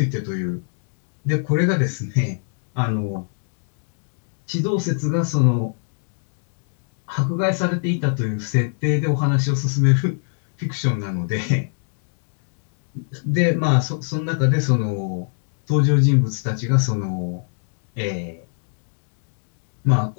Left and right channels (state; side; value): silent; right; digital silence